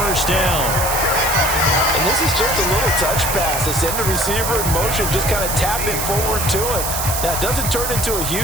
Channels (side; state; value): right; noise; hiss, 3 dB below the sound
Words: down. And this is just a little touch pass. They send the receiver in motion, just kind of tap it forward to him. Now, it doesn't turn into a